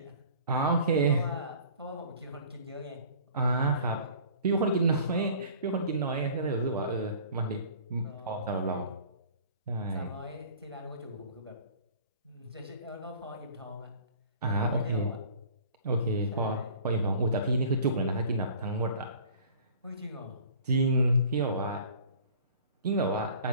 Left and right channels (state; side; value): inverted; both; correlation -0.47